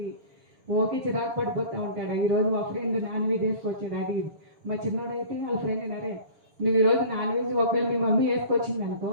ఓకే చిరాకు పడిపోతూ ఉంటాడు. ఈరోజు మా ఫ్రెండ్ నాన్ వెజ్ వేసుకొచ్చాడు అది ఇది. మా చిన్నోడైతే వాళ్ళ ఫ్రెండ్ అన్నారే, నువ్వు ఈరోజు నాన్ వెజ్ ఒకవేళ మీ మమ్మీ వేసుకొచ్చింది అనుకో,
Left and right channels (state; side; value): late; left; 6.9 ms